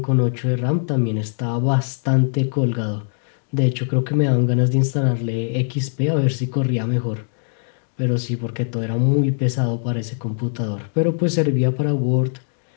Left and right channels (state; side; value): silent; right; digital silence